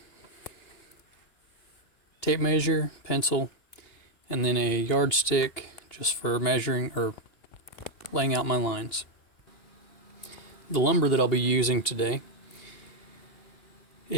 tape measure, pencil, and then a yardstick just for measuring or laying out my lines. The lumber that I'll be using today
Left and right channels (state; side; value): late; right; 2.8 ms